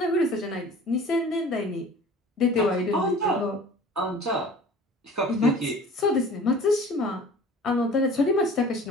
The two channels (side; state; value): both; normal; correlation 0.44